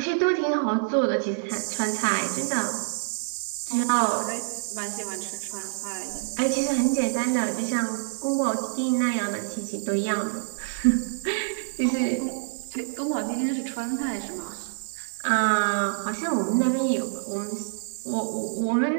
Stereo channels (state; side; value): silent; left; digital silence